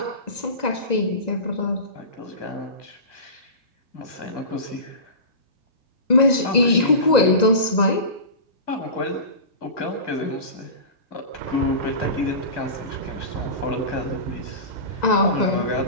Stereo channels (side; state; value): right; late; 1.9 ms